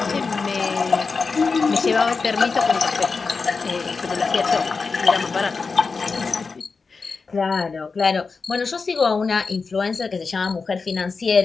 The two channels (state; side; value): quieter; right; 4.6 dB